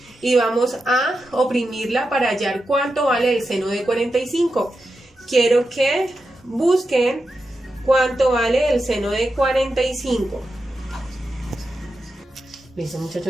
y vamos a oprimirla para hallar cuánto vale el seno de 45. Quiero que busquen cuánto vale el seno de 45. Listo,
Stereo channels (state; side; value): normal; both; correlation 0.89